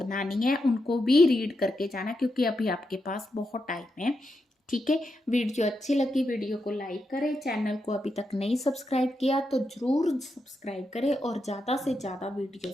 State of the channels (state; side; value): normal; both; correlation 0.85